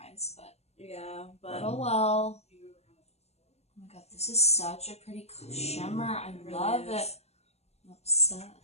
but... Yeah, but... Oh, well. Oh my god, this is such a pretty shimmer. I love it. I'm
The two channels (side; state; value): right; late; 0.31 ms